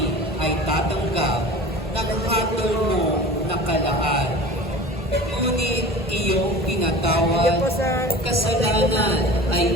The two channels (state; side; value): normal; both; correlation 0.37